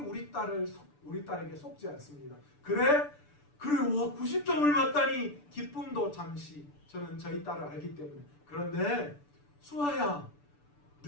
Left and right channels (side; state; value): right; late; 6.9 ms